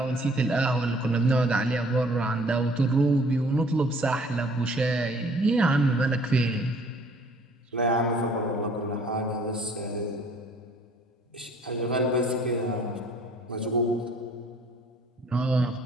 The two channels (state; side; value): normal; both; correlation 0.56